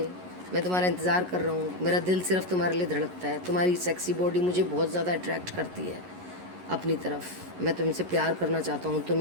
मैं तुम्हारा इंतज़ार कर रहा हूँ, मेरा दिल सिर्फ तुम्हारे लिए धड़कता है, तुम्हारी सेक्सी बॉडी मुझे बहुत ज़्यादा अट्रैक्ट करती है अपनी तरफ, मैं तुमसे प्यार करना चाहता हूँ,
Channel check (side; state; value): left; late; 11 ms